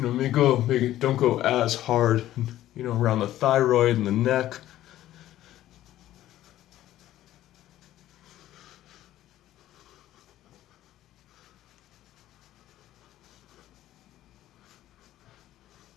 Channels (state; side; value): quieter; right; 13.7 dB